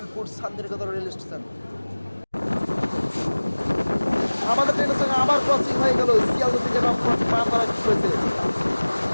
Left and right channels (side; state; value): both; inverted; correlation -1.00